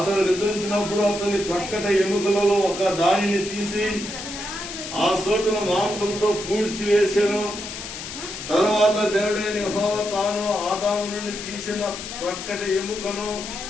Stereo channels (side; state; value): left; noise; hiss, 9 dB below the sound